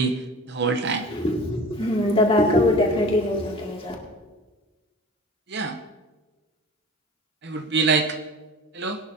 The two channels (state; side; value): normal; both; correlation 0.38